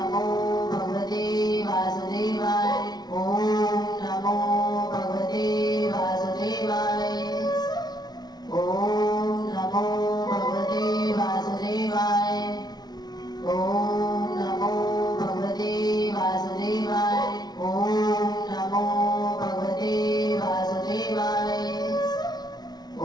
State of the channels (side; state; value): right; late; 0.19 ms